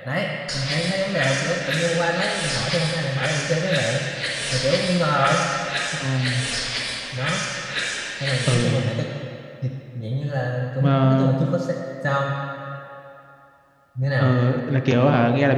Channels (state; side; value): identical; both; correlation 1.00